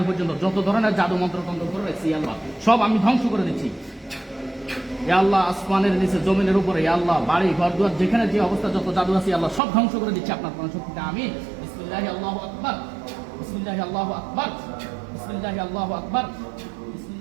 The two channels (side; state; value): left; drops out; at 9.6 s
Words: পর্যন্ত যত ধরনের জাদু মন্ত্র তন্ত্র করে রেখেছি আল্লাহ সব আমি ধ্বংস করে দিচ্ছি। ইয়া আল্লাহ, আসমানের নিচে জমিনের উপরে ইয়া আল্লাহ বাড়ি ঘর দুয়ার যেখানে যে অবস্থা যত জাদু আছে আল্লাহ সব ধ্বংস করে দিচ্ছি আপনার কোরআন শক্তিতে। আমি বিসমিল্লাহি আল্লাহু আকবার, বিসমিল্লাহি আল্লাহু আকবার, বিসমিল্লাহি আল্লাহু আকবার,